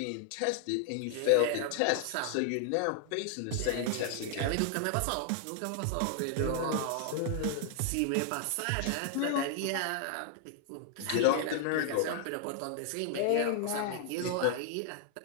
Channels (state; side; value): different; both; correlation 0.00